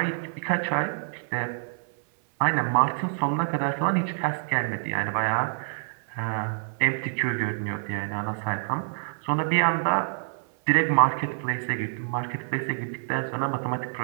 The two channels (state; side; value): silent; left; 60 dB below the other